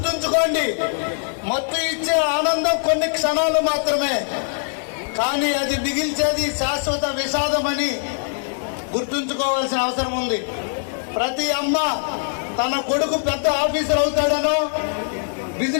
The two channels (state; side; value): silent; right; digital silence